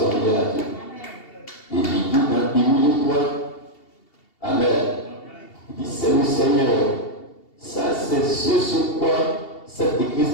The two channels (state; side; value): late; right; 2.7 ms